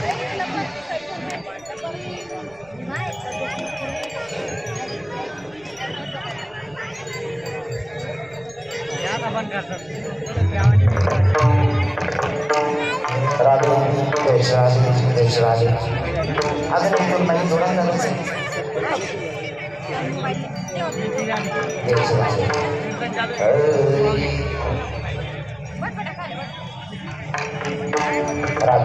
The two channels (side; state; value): right; noise; rumble, 27 dB below the sound